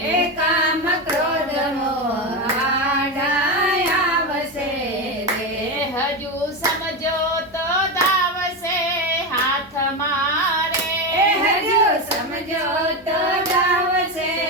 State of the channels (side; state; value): both; normal; correlation 0.14